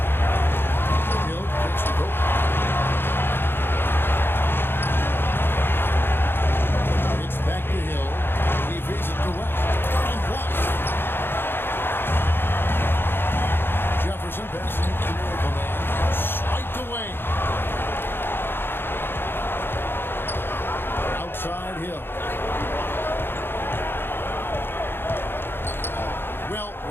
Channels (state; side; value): late; right; 0.10 ms